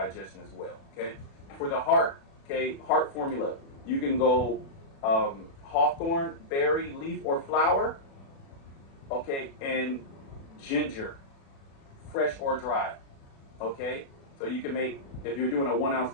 as well, okay? For the heart, okay, heart formula, you can go hawthorn, berry, leaf, or flower, okay, and ginger, fresh or dry, okay? So you can make, if you're doing a 1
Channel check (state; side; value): late; right; 36 ms